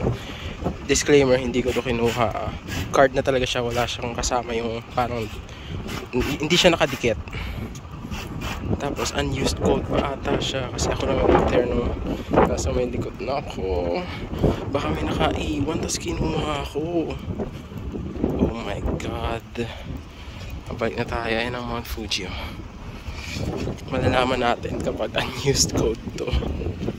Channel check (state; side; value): identical; both; correlation 1.00